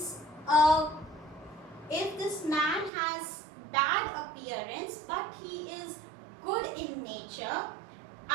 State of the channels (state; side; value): drops out; left; at 2.9 s